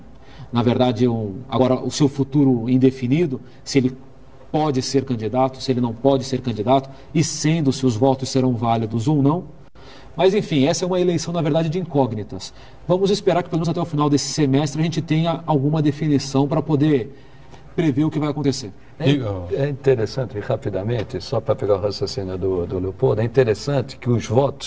na verdade, agora o seu futuro indefinido, se ele pode ser candidato, se ele não pode ser candidato, e se os votos serão válidos ou não. Mas, enfim, essa é uma eleição, na verdade, de incógnitas. Vamos esperar que, pelo menos até o final desse semestre, a gente tenha alguma definição para poder prever o que vai acontecer. É interessante, rapidamente, só para pegar o raciocínio do Leopoldo, é interessante que os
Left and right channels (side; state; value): both; identical; correlation 1.00